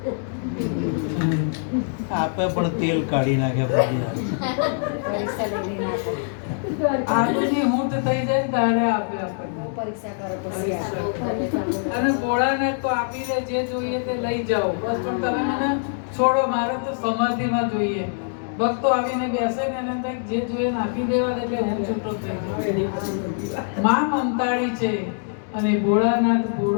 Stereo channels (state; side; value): silent; right; digital silence